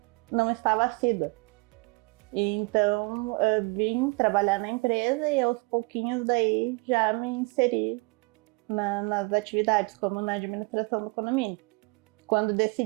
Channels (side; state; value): left; quieter; 29.1 dB